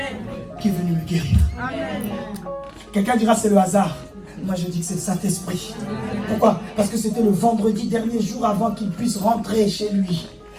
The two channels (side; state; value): both; identical; correlation 1.00